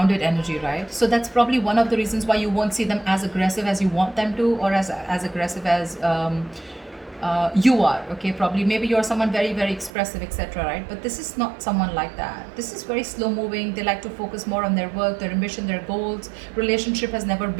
energy, right? So that's probably one of the reasons why you won't see them as aggressive as you want them to, or as aggressive as you are, okay? Probably, maybe you're someone very, very expressive, etc., right? But this is not someone like that. This is very slow moving. They like to focus more on their work, their ambition, their goals. Relationship has never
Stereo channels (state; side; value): drops out; left; at 9.9 s